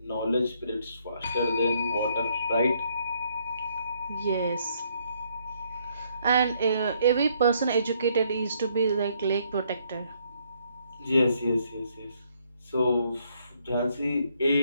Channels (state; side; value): inverted; both; correlation -0.70